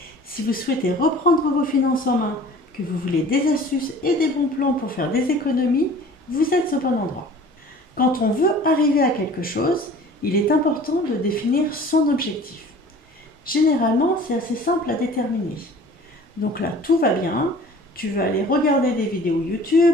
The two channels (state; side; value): normal; both; correlation 0.46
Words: Si vous souhaitez reprendre vos finances en main, que vous voulez des astuces et des bons plans pour faire des économies, vous êtes au bon endroit. Quand on veut arriver à quelque chose, il est important de définir son objectif. Généralement, c'est assez simple à déterminer. Donc là, tout va bien. Tu vas aller regarder des vidéos